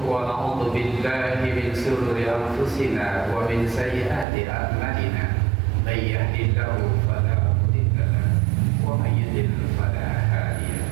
wa na'udzu billahi min shururi anfusina wa min sayyiati a'malina may yahdihillahu fala mudilla lahu wa may yudlil fala hadiya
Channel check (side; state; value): left; drops out; at 4.2 s